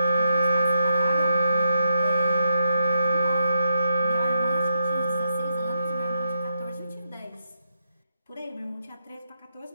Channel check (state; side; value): inverted; both; correlation -0.83